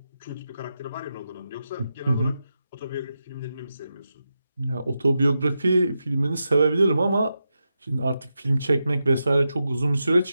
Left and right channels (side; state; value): both; inverted; correlation -0.88